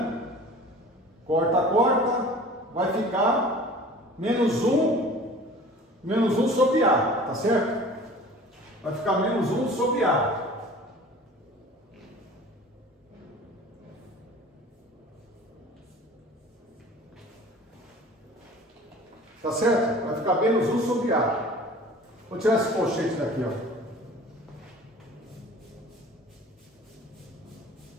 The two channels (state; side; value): normal; both; correlation 0.44